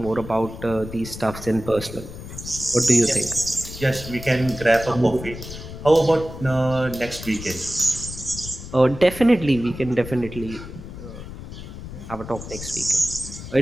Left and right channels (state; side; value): noise; left; rumble, 11 dB below the sound